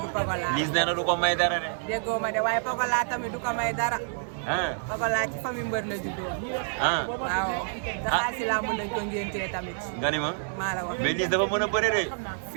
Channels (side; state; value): left; silent; digital silence